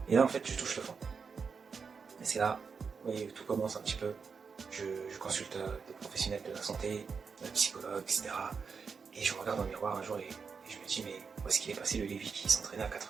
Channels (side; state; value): left; quieter; 5.6 dB